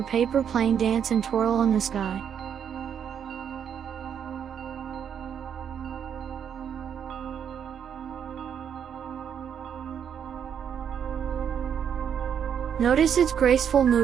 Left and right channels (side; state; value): left; quieter; 8.3 dB